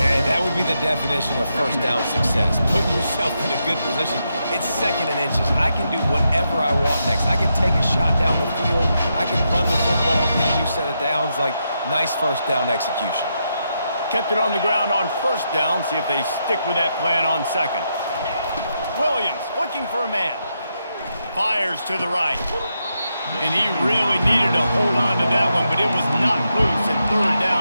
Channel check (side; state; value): both; inverted; correlation -0.83